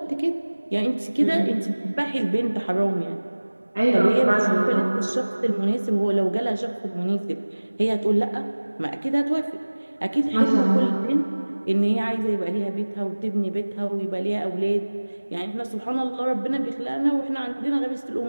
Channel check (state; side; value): inverted; both; correlation -1.00